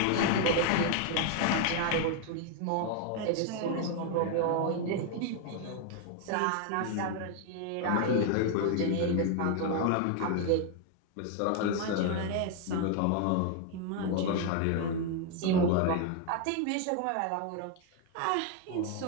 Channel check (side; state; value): both; different; correlation 0.01